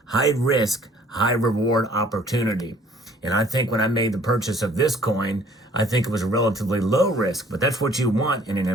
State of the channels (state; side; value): normal; both; correlation 0.57